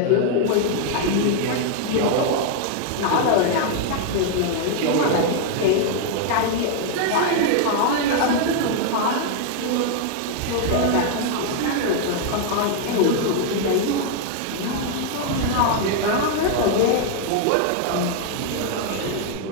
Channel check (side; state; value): both; different; correlation 0.00